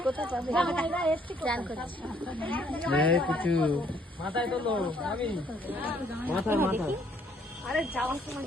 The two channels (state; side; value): normal; both; correlation 0.66